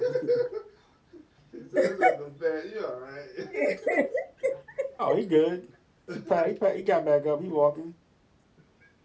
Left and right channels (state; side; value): identical; both; correlation 1.00